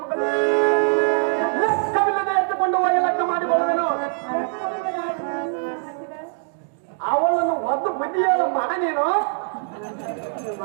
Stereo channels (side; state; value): left; silent; 64 dB below the other